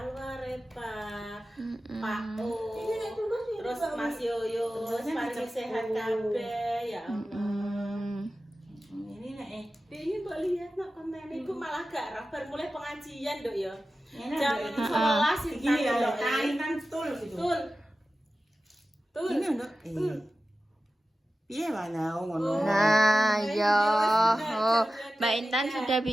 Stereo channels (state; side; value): normal; both; correlation 0.94